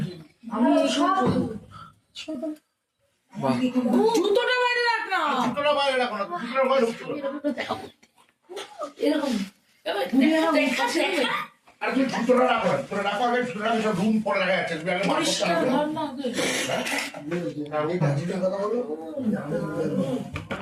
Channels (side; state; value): both; identical; correlation 1.00